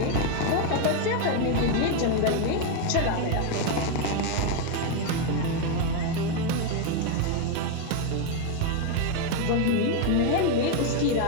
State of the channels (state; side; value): different; both; correlation 0.01